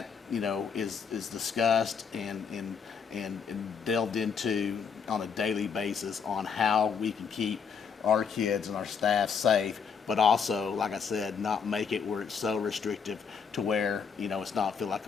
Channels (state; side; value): quieter; right; 6.3 dB